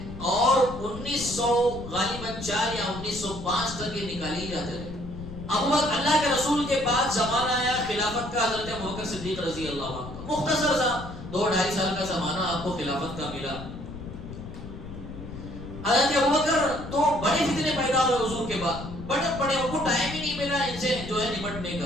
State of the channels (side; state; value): left; noise; rumble, 11 dB below the sound